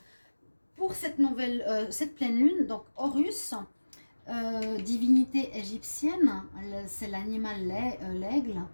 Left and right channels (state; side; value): inverted; both; correlation -1.00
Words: pour cette cette pleine lune, donc Horus, divinité égyptienne, c'est l'animal l'aigle,